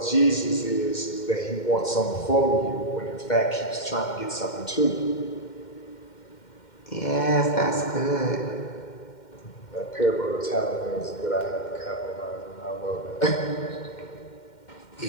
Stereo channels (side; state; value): right; late; 2.1 ms